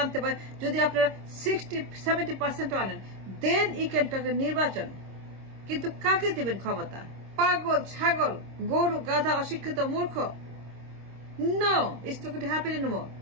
আনতে পারেন, যদি আপনারা 60-70% আনেন, দেন ই ক্যান টক নির্বাচন। কিন্তু কাকে দিবেন ক্ষমতা? পাগল ছাগল গরু গাধা অশিক্ষিত মূর্খ? No, it's not going to happen anymore.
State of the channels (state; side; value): late; left; 26 ms